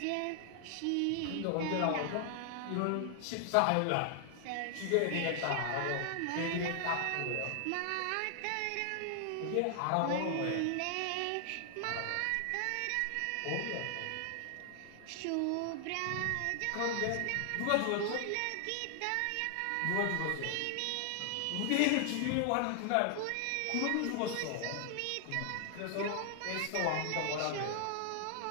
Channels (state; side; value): different; both; correlation 0.00